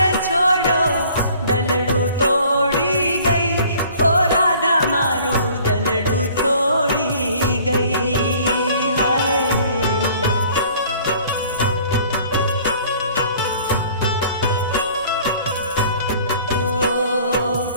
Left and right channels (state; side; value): inverted; both; correlation -0.53